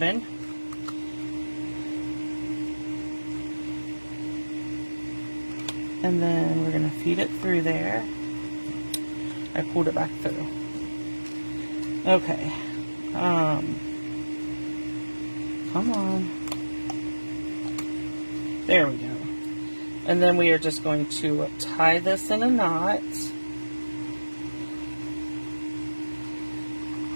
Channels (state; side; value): inverted; both; correlation -1.00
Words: And then we're going to feed it through there. I pulled it back through. Okay. Come on. There we go. And then we are just going to tie this in a knot.